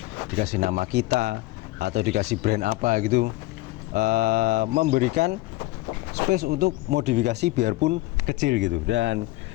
dikasih nama kita atau dikasih brand apa gitu, memberikan space untuk modifikasi biarpun kecil gitu. Dan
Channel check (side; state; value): right; quieter; 19.4 dB